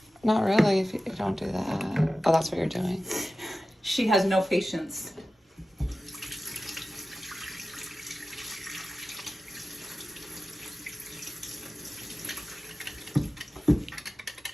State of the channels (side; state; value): both; normal; correlation 0.95